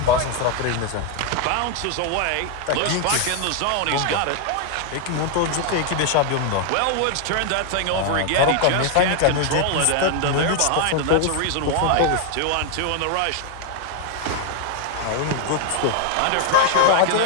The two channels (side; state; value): both; different; correlation 0.01